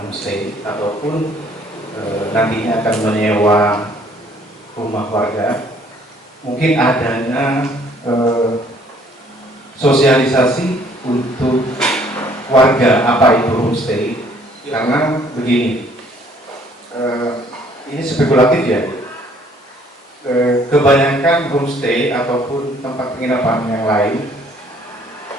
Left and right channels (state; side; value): normal; both; correlation 0.60